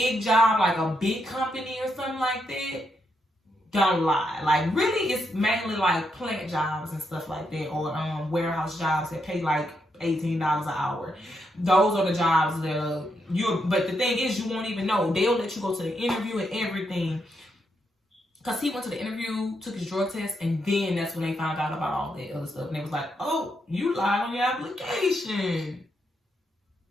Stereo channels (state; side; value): normal; both; correlation 0.80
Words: job, like a big company or something like that, don't lie. Like, really, it's mainly like plant jobs and stuff like that, or warehouse jobs that pay like $18 an hour. Those are the jobs that but the thing is, you won't even know. They'll let you go to the interview and everything. Because he went to the interview, took his drug test, and then that's when they found out about all that other stuff. And they was like, oh, you lied on your application.